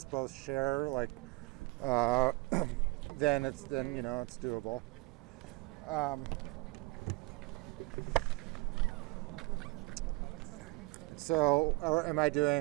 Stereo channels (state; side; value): quieter; left; 24.2 dB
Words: both share, like, then it's doable. So, am I